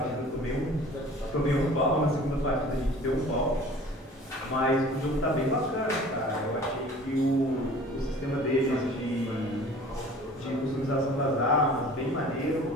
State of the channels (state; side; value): normal; both; correlation 0.46